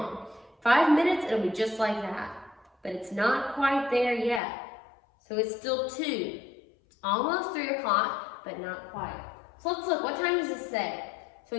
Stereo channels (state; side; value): drops out; right; at 4.4 s